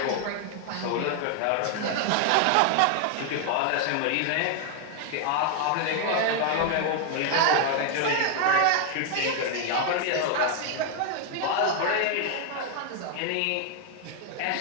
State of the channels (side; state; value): both; different; correlation 0.00